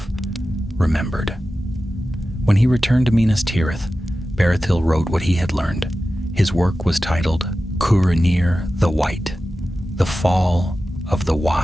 remembered. When he returned to Minas Tirith, Berethil wrote what he had learned. His work was titled Curanir the White, The Fall of the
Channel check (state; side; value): normal; both; correlation 0.94